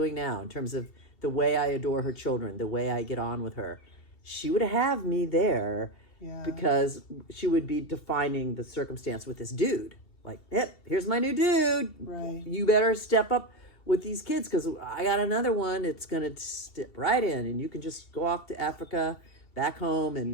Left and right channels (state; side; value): late; right; 2.7 ms